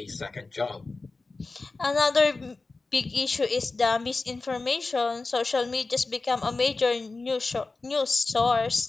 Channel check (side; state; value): right; quieter; 3.6 dB